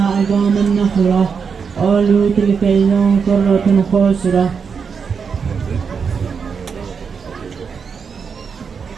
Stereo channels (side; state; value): left; quieter; 6.0 dB